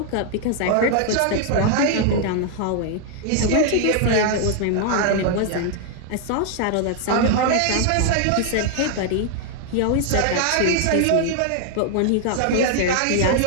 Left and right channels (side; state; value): both; different; correlation 0.00